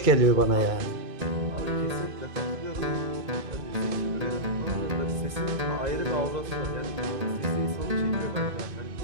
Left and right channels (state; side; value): late; left; 2.0 ms